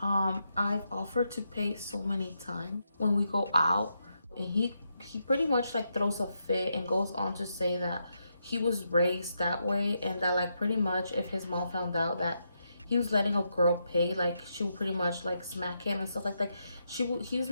I've offered to pay so many times when we go out, and he he pretty much like throws a fit and goes on to say that he was raised that way, and that like pretty much if his mom found out that he was letting a girl pay, like she would pretty much like smack him and stuff like that. He was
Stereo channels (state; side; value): inverted; both; correlation -0.82